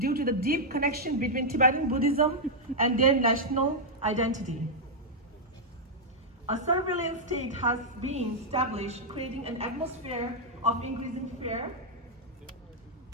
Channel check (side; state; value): both; normal; correlation -0.05